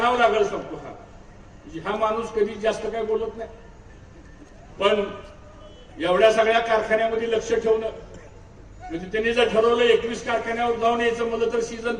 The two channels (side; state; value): both; identical; correlation 1.00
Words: लागेल सांगतो. हा माणूस कधी जास्त काय बोलत नाही, पण एवढ्या सगळ्या कारखान्यामध्ये लक्ष ठेवणं म्हणजे त्यांनी जर ठरवलं 21 कारखान्यावर जाऊन यायचं म्हणलं तर